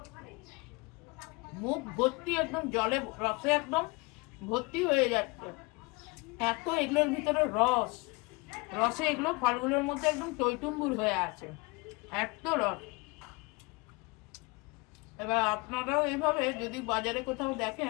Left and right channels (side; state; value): right; quieter; 26.4 dB